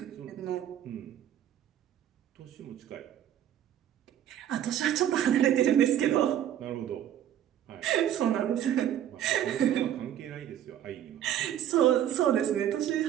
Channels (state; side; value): quieter; left; 10.8 dB